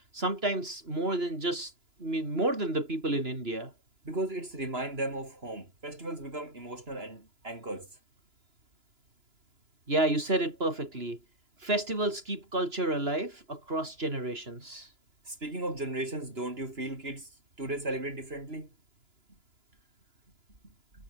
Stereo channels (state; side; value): late; left; 2.9 ms